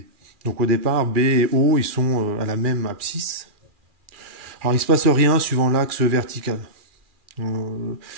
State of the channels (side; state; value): left; late; 2.4 ms